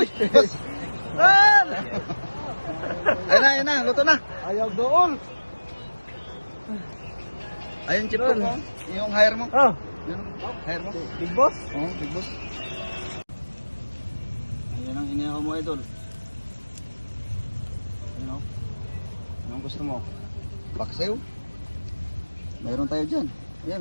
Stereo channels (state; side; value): inverted; both; correlation -1.00